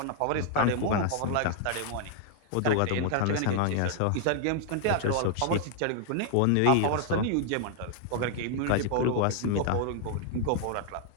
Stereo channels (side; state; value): both; different; correlation 0.00